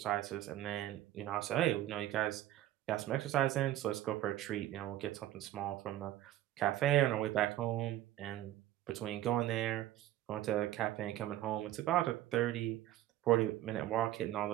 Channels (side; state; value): left; quieter; 13.9 dB